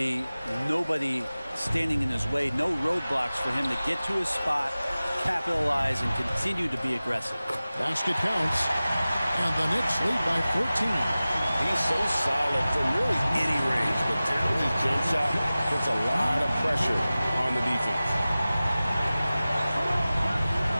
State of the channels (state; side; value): inverted; both; correlation -0.97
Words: nobody standing in his way. No roadblocks for him to get to his spot, capitalize, and continue to be aggressive. Basket counts. And the Knicks lead by 14. He's so solid from really any range, but down his jump shot puts a lot of pressure on the defense.